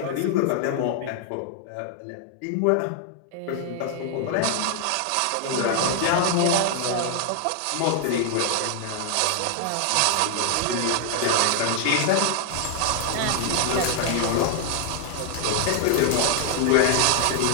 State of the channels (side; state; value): both; different; correlation 0.00